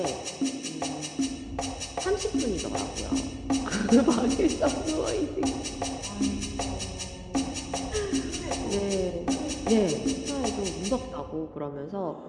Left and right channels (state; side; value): identical; both; correlation 1.00